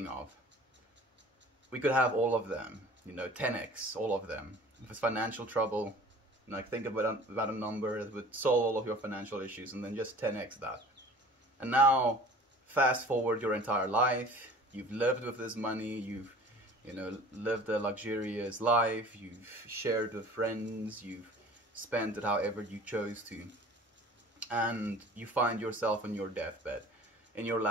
of. We could have all of them, you know, 10x, all of them. If it's financial trouble, like think about a number that would solve all of your financial issues, and then just 10x that. And now, fast forward your entire life. You've lived with this money. You've, you know, lived a luxurious life. You've shared with friends. You've spent it however you chose to. And you find yourself on your deathbed, in your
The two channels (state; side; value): normal; both; correlation 0.45